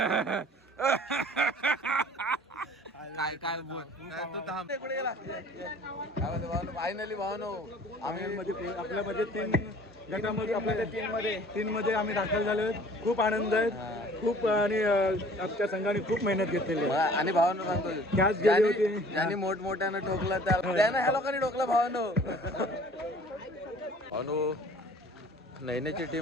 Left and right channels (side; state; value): both; normal; correlation 0.50